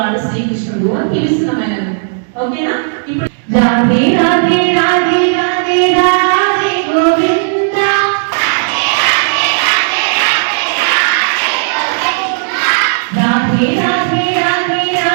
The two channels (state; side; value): silent; left; digital silence